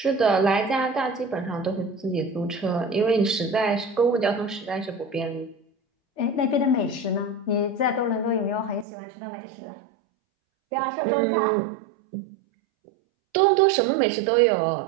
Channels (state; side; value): drops out; left; at 8.8 s